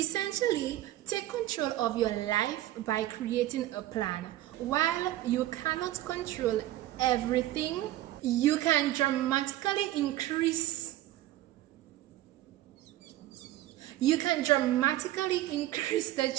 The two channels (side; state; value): left; quieter; 14.7 dB